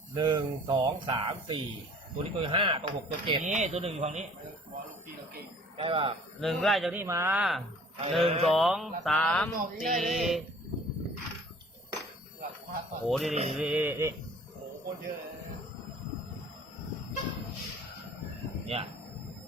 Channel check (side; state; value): both; normal; correlation 0.50